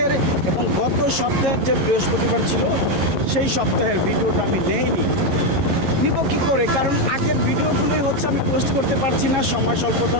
এবং গত সপ্তাহের যে বৃহস্পতিবার ছিল সেই সপ্তাহের ভিডিওটা আমি নেইনি। নিব কী করে, কারণ আগের ভিডিওগুলোই হচ্ছে আমি পোস্ট করতে পারছি না সময়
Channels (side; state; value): left; late; 11 ms